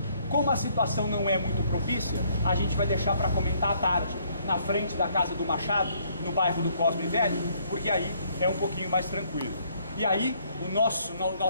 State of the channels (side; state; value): both; inverted; correlation -0.66